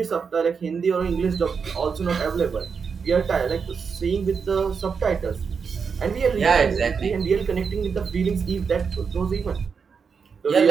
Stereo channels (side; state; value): left; quieter; 5.8 dB